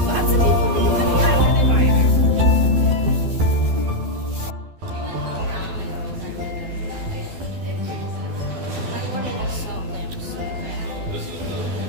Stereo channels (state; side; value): late; left; 12 ms